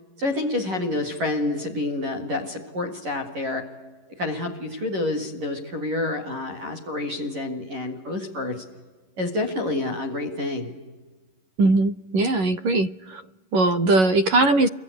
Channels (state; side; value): late; left; 11 ms